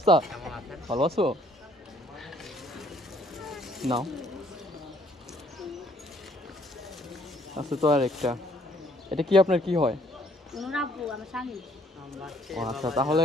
ভালো আছো? নাও। আছে তো আর একটা। এটা কি আপনার কি হয়? ও আচ্ছা,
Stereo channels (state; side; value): normal; both; correlation 0.64